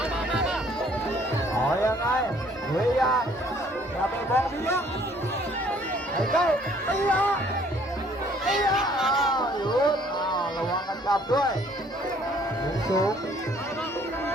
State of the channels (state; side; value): normal; both; correlation 0.60